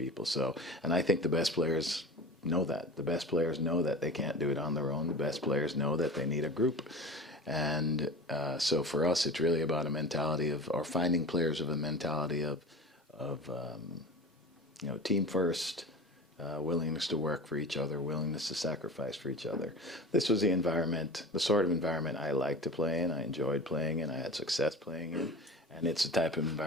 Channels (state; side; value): normal; both; correlation 0.34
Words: So, and I think the best players know that. The best players know that they can't do it on their own. The best players know that they need a group. And so for us, it's really about a mentality of, or finding players of a mentality of team first, willingness to work for each other, willingness to sacrifice for each other. This was the environment, the sort of environment I liked to play in, I enjoyed playing in, I had success playing in. And it's a type of